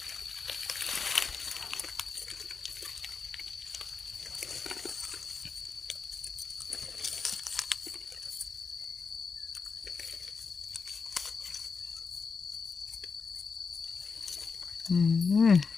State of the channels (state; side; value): quieter; right; 5.1 dB